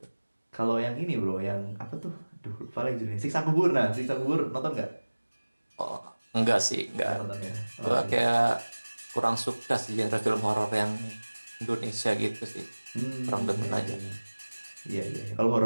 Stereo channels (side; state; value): both; inverted; correlation -1.00